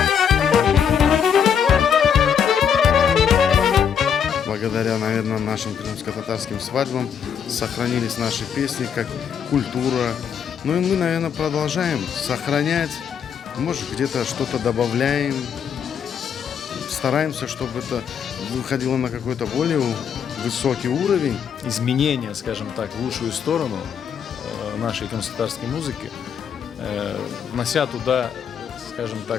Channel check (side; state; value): right; quieter; 7.7 dB